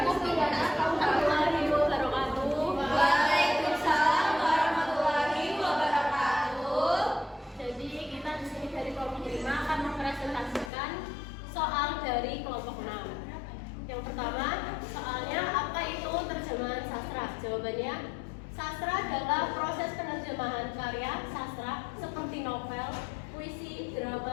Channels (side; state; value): right; drops out; at 10.7 s